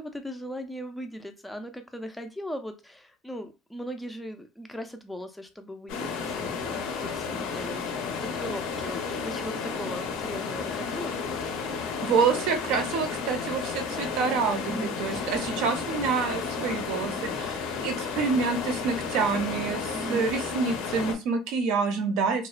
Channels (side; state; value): both; normal; correlation 0.40